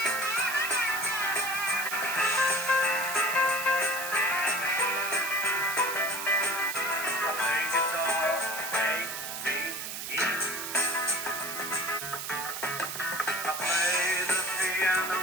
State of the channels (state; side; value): noise; right; hiss, 6 dB below the sound